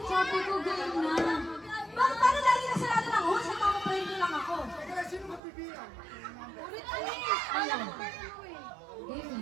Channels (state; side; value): drops out; left; at 5.4 s